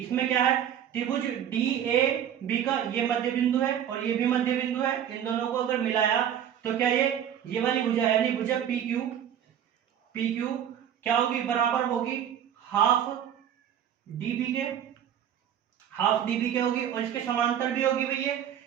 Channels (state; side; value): quieter; left; 9.6 dB